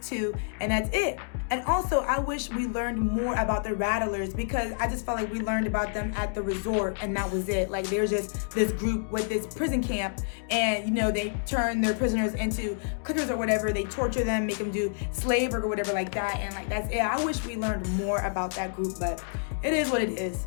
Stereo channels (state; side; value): silent; right; digital silence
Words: 2, and that's it. And also, I wish we learned more about the Rattlers, because I just felt like we learned about them at the resort, and that was it. Like, they're just this group with this prison camp, and, you know, they turn their prisoners into cookers or whatever. They torture them, make them do slave work or whatever like that, and, like, that's it. I wish we learned more about that group, but it is what it is.